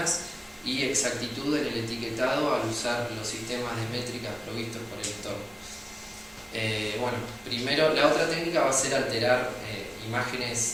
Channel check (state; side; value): identical; both; correlation 1.00